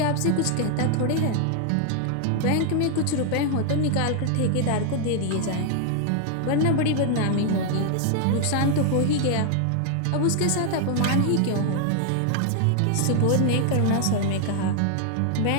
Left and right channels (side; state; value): both; different; correlation 0.00